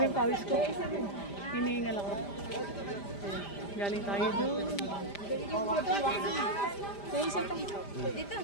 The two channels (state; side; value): late; right; 5.0 ms